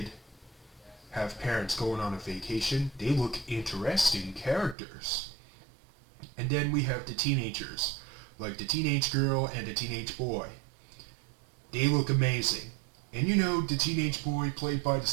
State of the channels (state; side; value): drops out; left; at 4.8 s